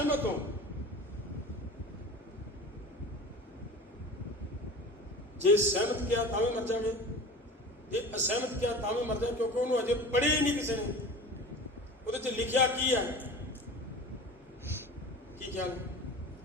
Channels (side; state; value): both; normal; correlation 0.36